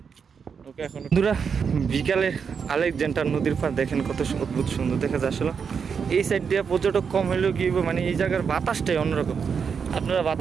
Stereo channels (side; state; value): left; quieter; 6.3 dB